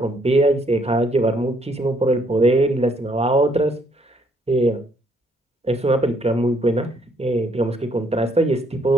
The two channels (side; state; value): both; normal; correlation 0.68